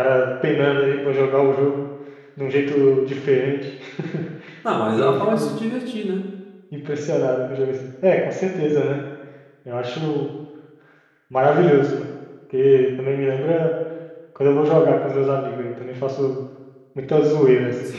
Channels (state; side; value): identical; both; correlation 1.00